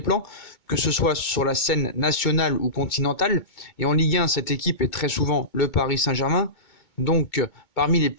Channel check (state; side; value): late; right; 2.2 ms